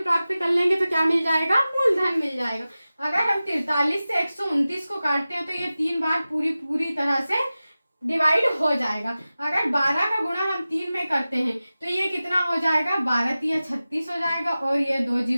प्राप्त कर लेंगे तो क्या मिल जाएगा, मूलधन मिल जाएगा। अगर हम 43 से 129 को काटते हैं तो ये 3 बार पूरी तरह से डिवाइड हो जाएगा। अगर 12 का गुणा हम 3 में करते हैं तो ये कितना हो जाएगा 12 3 36 हो जाएगा, और ये 2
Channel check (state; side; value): inverted; both; correlation -0.96